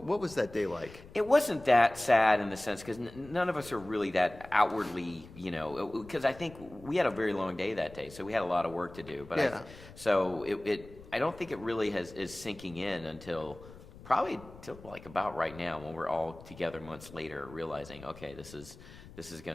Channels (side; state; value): left; noise; rumble, 19 dB below the sound